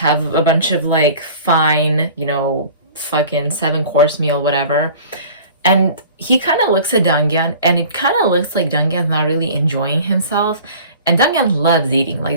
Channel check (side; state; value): both; inverted; correlation -0.45